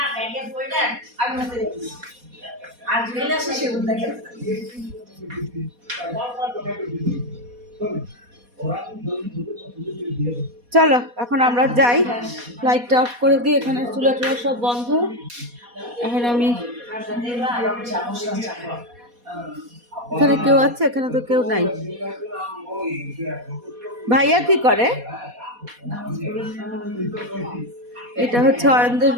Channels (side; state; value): left; late; 4.2 ms